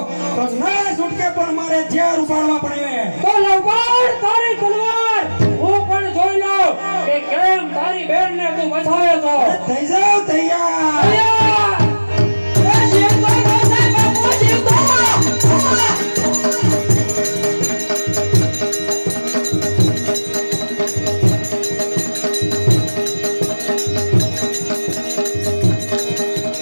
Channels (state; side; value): inverted; both; correlation -1.00